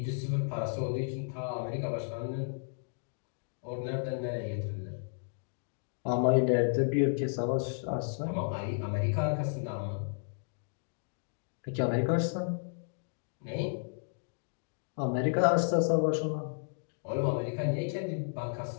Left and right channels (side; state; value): right; silent; digital silence